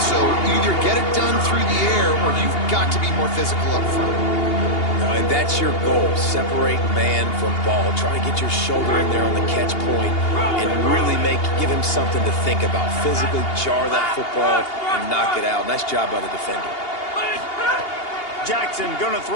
So either get it done through the air or you've got to be more physical up front. And that's your goal. Separate man from ball. Try to get your shoulder in there on the catch point and really give him something to think about. Physically jar that football and knock it out. Nice job by the defender. Jackson gonna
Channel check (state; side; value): late; right; 2.8 ms